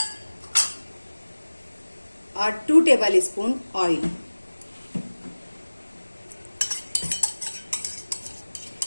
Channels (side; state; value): both; inverted; correlation -1.00